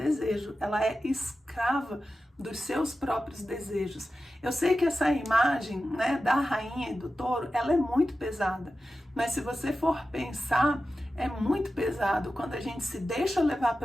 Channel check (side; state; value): both; normal; correlation 0.93